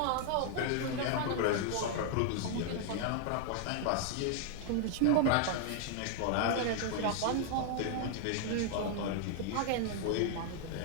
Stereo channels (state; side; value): different; both; correlation 0.00